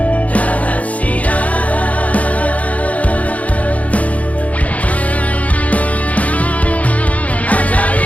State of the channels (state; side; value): late; right; 0.069 ms